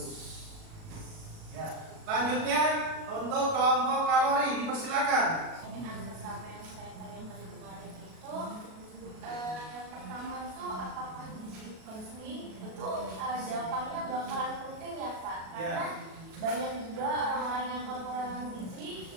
Ya. Lanjutnya untuk kelompok kalori, dipersilakan. Pertanyaan pertama yang saya tanyakan kemarin itu pertama itu apakah gizi penting? Itu jawabannya bakalan penting ya Pak, karena banyak juga orang-orang yang kekurangan gizi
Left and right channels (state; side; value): late; left; 37 ms